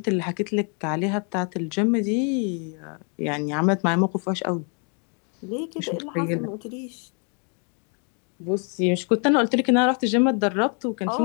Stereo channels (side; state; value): right; quieter; 38.8 dB